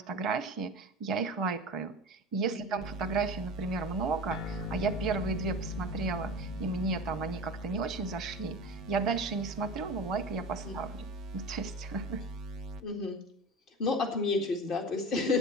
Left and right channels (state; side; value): normal; both; correlation 0.32